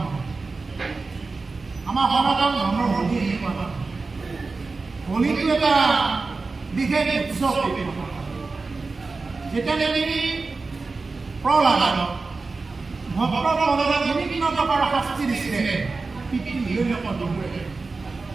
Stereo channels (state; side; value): quieter; left; 3.9 dB